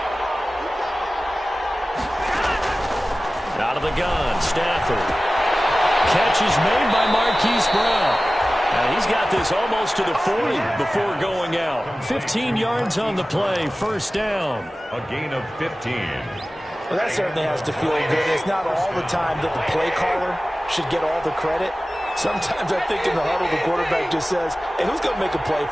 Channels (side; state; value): both; normal; correlation 0.96